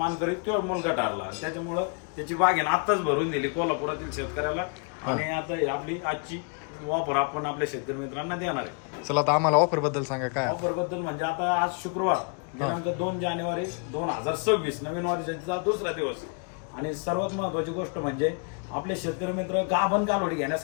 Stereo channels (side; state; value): right; quieter; 38.1 dB